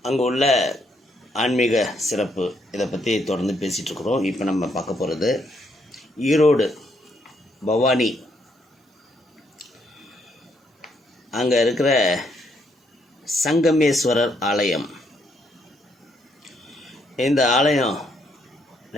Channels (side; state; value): both; normal; correlation 0.73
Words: அங்கே உள்ள ஆன்மீக சிறப்பு, இதை பற்றி தொடர்ந்து பேசிகிட்ருக்குறோம். இப்போ நம்ம பார்க்க போகிறது ஈரோடு பவானி, அங்கே இருக்கிற சங்கமேஸ்வரர் ஆலயம். இந்த ஆலயம்